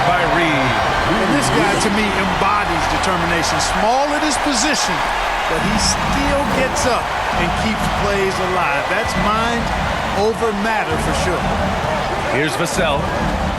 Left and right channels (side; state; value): both; identical; correlation 1.00